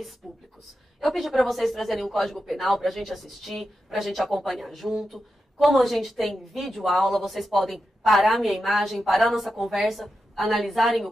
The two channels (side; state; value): both; normal; correlation 0.89